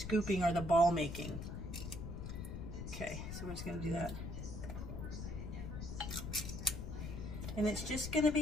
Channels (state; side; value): noise; left; rumble, 6 dB below the sound